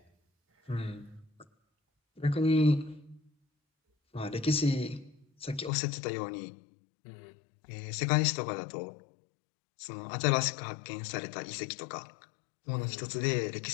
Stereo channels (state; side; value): drops out; right; at 5.7 s